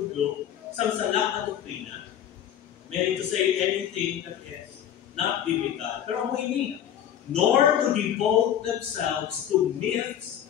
sa sala na doktrina. Meaning to say anything that is not biblical. Pero mo ini, nor to devote themselves to myths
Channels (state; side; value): quieter; right; 10.0 dB